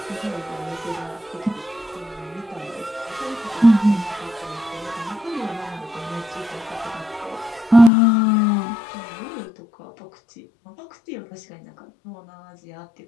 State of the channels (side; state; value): right; drops out; at 7.9 s